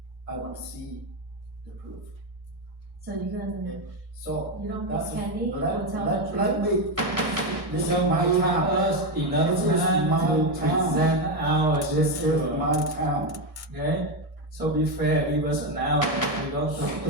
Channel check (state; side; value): late; left; 1.6 ms